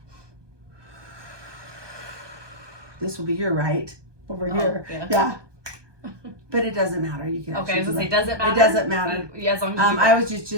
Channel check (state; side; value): late; left; 1.2 ms